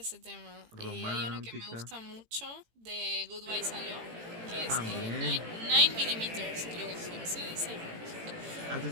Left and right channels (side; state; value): left; late; 18 ms